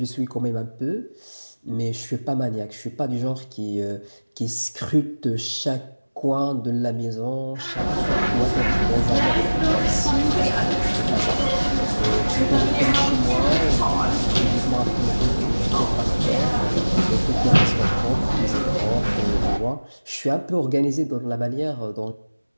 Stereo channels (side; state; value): both; inverted; correlation -1.00